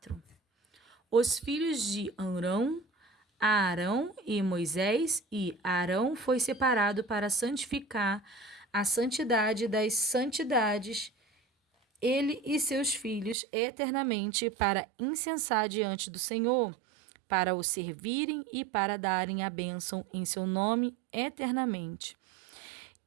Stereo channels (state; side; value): drops out; left; at 13.4 s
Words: Os filhos de Amrão, Arão e Moisés, e Arão foi separado para santificar a santidade das santidades, ele e seus filhos eternamente, para incensar diante do Senhor, para o servirem e para darem a bênção em seu nome eternamente.